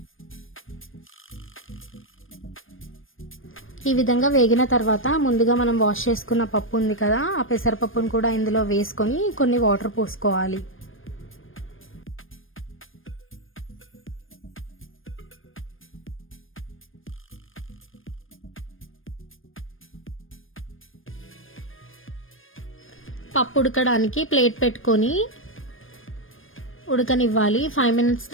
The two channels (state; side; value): late; right; 0.59 ms